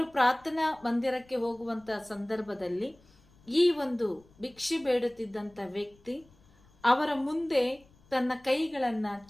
ಪ್ರಾರ್ಥನಾ ಮಂದಿರಕ್ಕೆ ಹೋಗುವಂತ ಸಂದರ್ಭದಲ್ಲಿ ಈ ಒಂದು ಭಿಕ್ಷೆ ಬೇಡುತ್ತಿದ್ದಂತ ವ್ಯಕ್ತಿ ಅವರ ಮುಂದೆ ತನ್ನ ಕೈಗಳನ್ನ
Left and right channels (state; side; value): noise; left; rumble, 29 dB below the sound